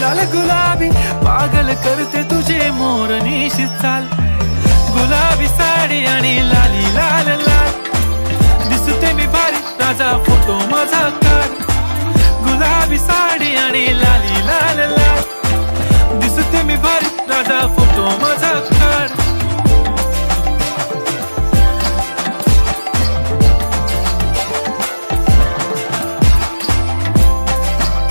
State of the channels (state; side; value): inverted; both; correlation -1.00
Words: लाल गुलाबी पागल करते तुझे मोरनीशी चाल गुलाबी साडी आणि लाली लाल लाल दिसते मी भारी राजा फोटो माझा काढ गुलाबी साडी आणि लाली लाल लाल दिसते मी भारी राजा फोटो माझा काढ